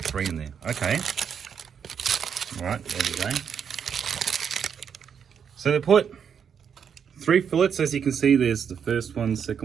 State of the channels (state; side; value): quieter; left; 7.5 dB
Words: 3 in there. Okay. All right, there we go. So they put 3 fillets, as you can see. There's the first one,